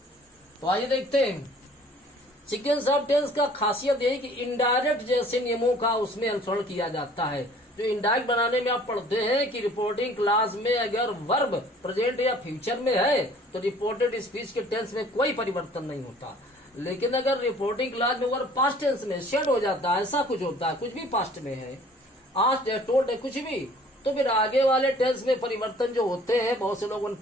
तो आइए देखते हैं। सीक्वेंस ऑफ टेंस का खासियत यही कि इनडायरेक्ट जैसे नियमों का उसमें अनुसरण किया जाता है। जो इनडायरेक्ट बनाने में आप पढ़ते हैं कि रिपोर्टिंग क्लास में अगर वर्ब प्रेजेंट या फ्यूचर में है तो रिपोर्टेड स्पीच के टेंस में कोई परिवर्तन नहीं होता। लेकिन अगर रिपोर्टिंग क्लास में वर्ब पास्ट टेंस में शेड हो जाता है, ऐसा कुछ होता है, कुछ भी पास्ट में है, आस्क्ड है, टोल्ड है, कुछ भी, तो फिर आगे वाले टेंस में परिवर्तन जो होते हैं, बहुत से लोगों ने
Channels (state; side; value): normal; both; correlation 0.53